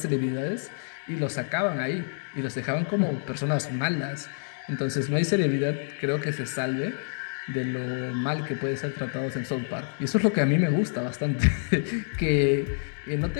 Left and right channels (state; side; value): silent; right; digital silence